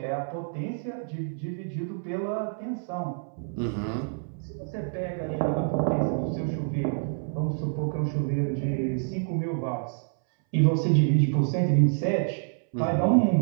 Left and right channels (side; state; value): left; silent; 60 dB below the other